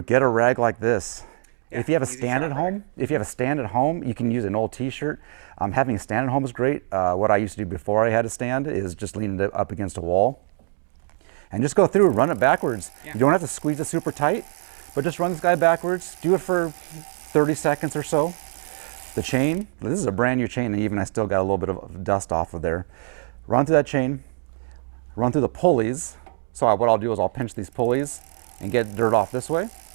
get a rag like this. Yeah, if you have a easy stand shop at rag. home, if you have a stand at home, you can use an old t-shirt. Having a stand at home is great. What I used to do before I had a stand is just lean it up against a wall and just go through, run it backwards. Yeah. You don't have to squeeze it super tight, but just run this guy backwards. Do it for 30 seconds or so. The chain, this is a brand new chain, and even I still got a little bit of dust off of there. Run through that chain, run through the pulleys. So what I'll do is I'll pinch these pulleys and get dirt off this way.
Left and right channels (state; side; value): silent; left; digital silence